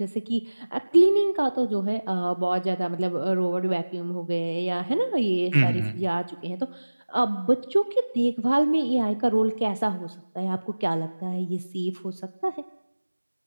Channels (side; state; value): both; inverted; correlation -1.00